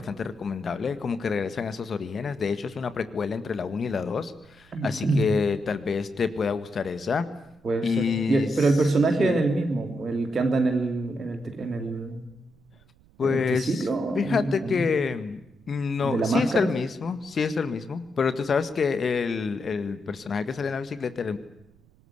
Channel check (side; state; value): right; noise; rumble, 29 dB below the sound